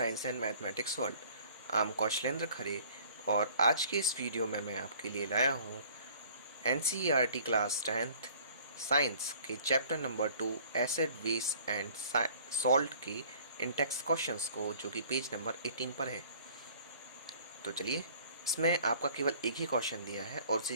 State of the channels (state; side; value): inverted; both; correlation -0.53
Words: and mathematics world. I am Kaushlendra Khare और आज के इस वीडियो में मैं आपके लिए लाया हूँ एनसीईआरटी क्लास 10th साइंस के chapter number 2 acid base and salt के इंटेक्स क्वेश्चंस को, जो कि पेज नंबर 18 पर है। तो चलिए, इसमें आपका केवल एक ही क्वेश्चन दिया है और